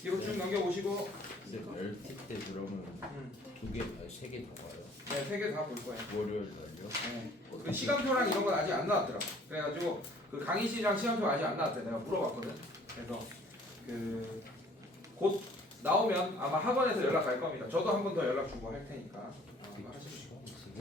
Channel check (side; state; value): both; normal; correlation 0.55